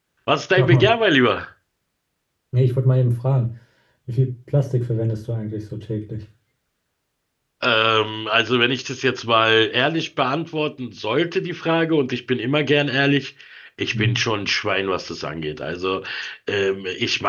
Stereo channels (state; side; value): identical; both; correlation 1.00